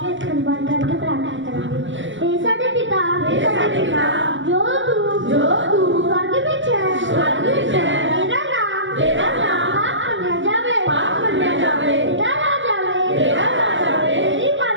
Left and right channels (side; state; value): left; late; 0.55 ms